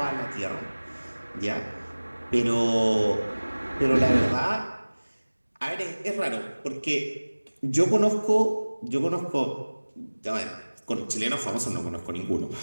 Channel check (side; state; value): both; inverted; correlation -1.00